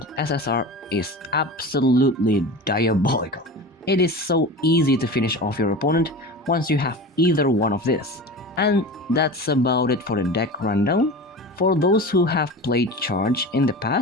SSR is absolutely diabolical. It is so easy to finish off your opponent once you have either one of this. And that's about it for the deck rundown. For those who have played Charge in the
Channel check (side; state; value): both; normal; correlation 0.32